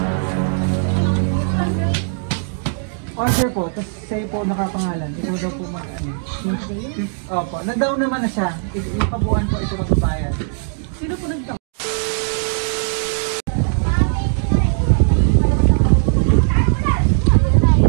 Order po, tapos sa'yo po nakapangalan. Ikaw daw po mag-ano. Opo, nag-down naman na siya. Ipabuan po ito magbabayad. Sino po nag-down?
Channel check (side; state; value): left; silent; digital silence